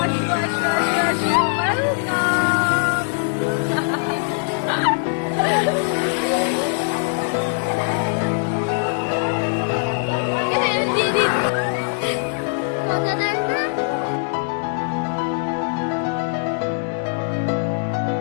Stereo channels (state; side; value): silent; right; digital silence